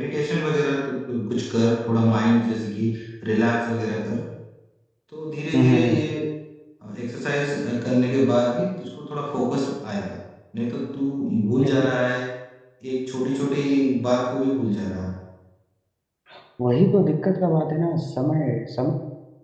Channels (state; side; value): identical; both; correlation 1.00